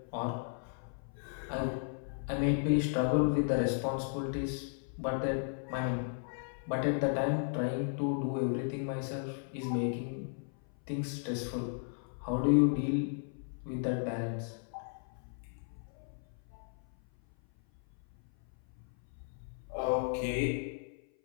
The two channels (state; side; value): silent; right; 54 dB below the other